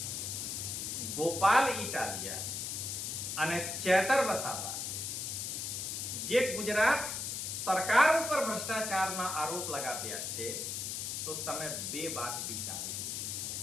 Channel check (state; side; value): noise; left; hiss, 3 dB below the sound